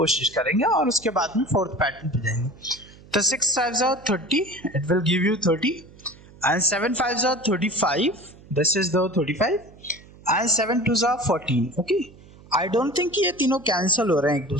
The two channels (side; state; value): right; noise; hum, 23 dB below the sound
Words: करेंगे और उसके बाद में 4th पैटर्न पे जाएंगे। तो 6 5s are 30, it will give you 30, and 7 5s are 35, this is the 35, and 7 2s are 14. Okay, I don't think ये तीनों कैंसिल हो रहे हैं, एक